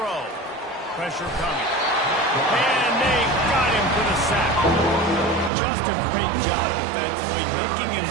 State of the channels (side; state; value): left; drops out; at 5.5 s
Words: Pressure coming. And they got him for the sack. Just a great job defensively, making him